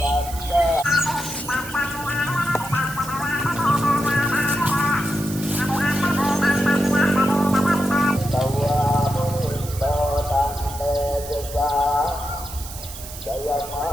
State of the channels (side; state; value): right; noise; hiss, 13 dB below the sound